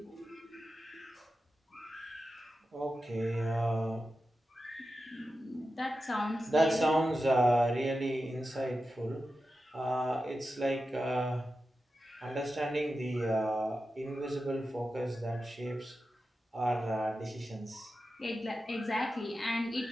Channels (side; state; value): both; normal; correlation 0.92